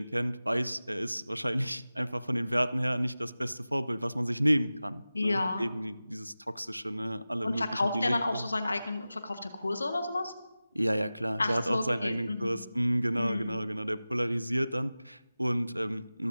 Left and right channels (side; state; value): both; inverted; correlation -0.96